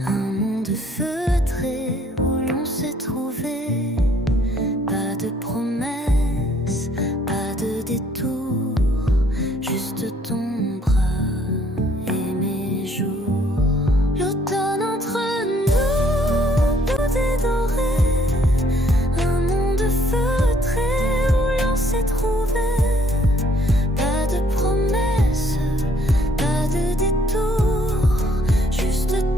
un monde feutré où l'on s'est trouvé. Pas de promesses, pas de détour, juste ton bras et mes jours. L'automne entre nous, doux et doré, un monde feutré où l'on s'est trouvé. Pas de promesses, pas de détour, juste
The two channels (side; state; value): both; normal; correlation 0.64